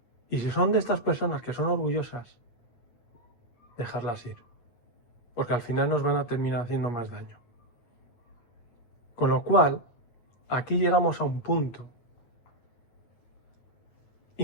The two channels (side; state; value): right; late; 8.8 ms